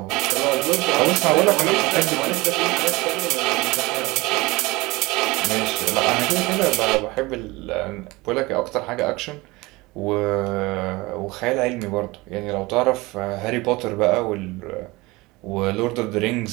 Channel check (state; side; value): quieter; left; 22.3 dB